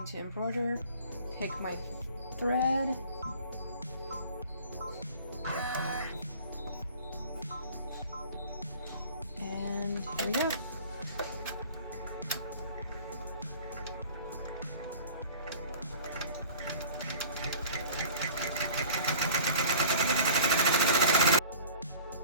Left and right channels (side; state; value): both; inverted; correlation -0.44